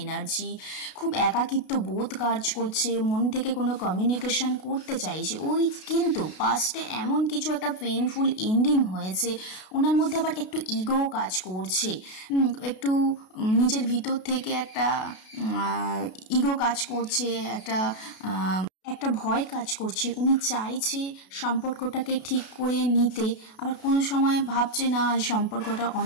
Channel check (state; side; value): late; right; 32 ms